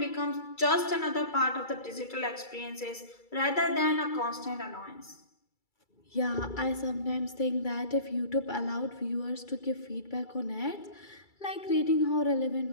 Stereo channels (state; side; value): late; right; 2.3 ms